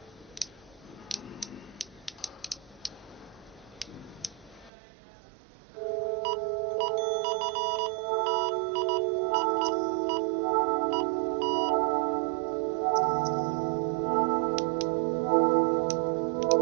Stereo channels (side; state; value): left; drops out; at 4.7 s